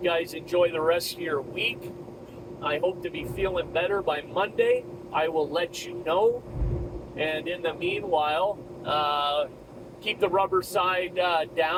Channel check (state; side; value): identical; both; correlation 1.00